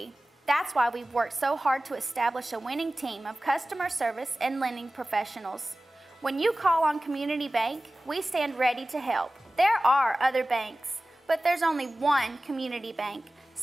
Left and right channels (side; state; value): both; normal; correlation 0.97